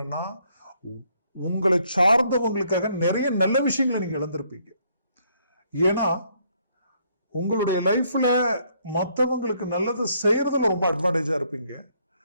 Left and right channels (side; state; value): both; inverted; correlation -0.69